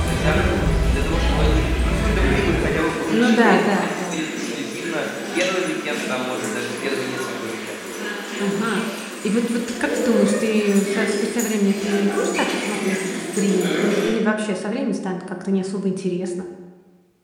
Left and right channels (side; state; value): both; identical; correlation 1.00